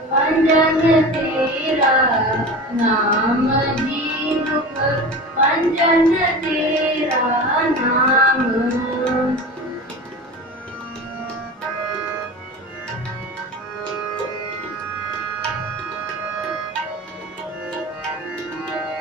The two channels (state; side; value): normal; both; correlation 0.32